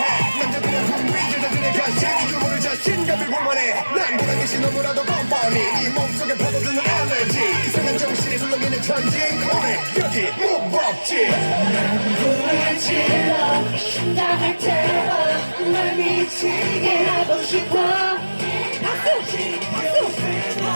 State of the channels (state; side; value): inverted; both; correlation -1.00